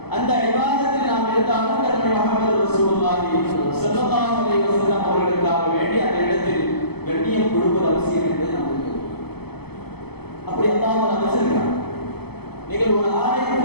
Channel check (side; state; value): right; late; 0.97 ms